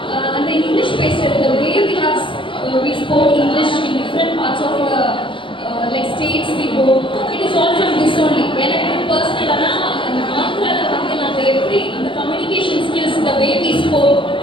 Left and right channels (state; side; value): late; right; 0.25 ms